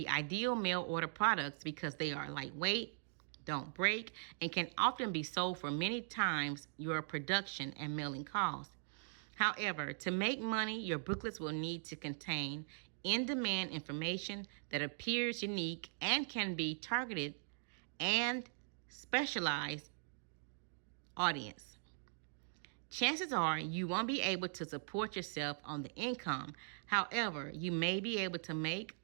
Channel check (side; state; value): left; silent; digital silence